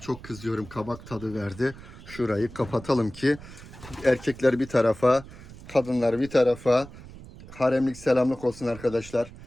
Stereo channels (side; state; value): right; noise; rumble, 17 dB below the sound